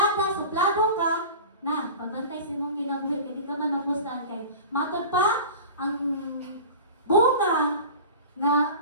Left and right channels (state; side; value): inverted; both; correlation -0.36